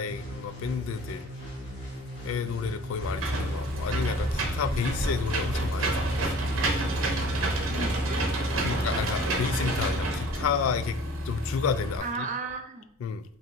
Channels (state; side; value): normal; both; correlation 0.46